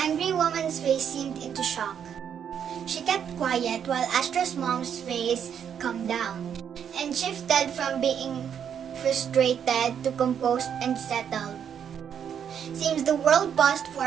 woman's face seemed into shock. She kept quiet while Astra's mom's face calmed down and shifted from being frustrated to composed and settled. Seems the world paused for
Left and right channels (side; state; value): left; quieter; 8.3 dB